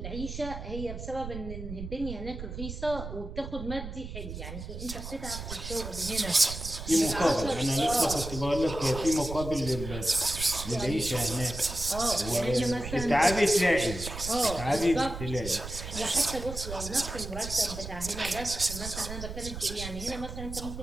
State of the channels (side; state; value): right; noise; rumble, 8 dB below the sound